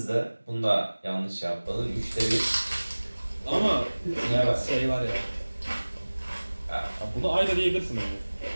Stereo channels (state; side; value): inverted; both; correlation -1.00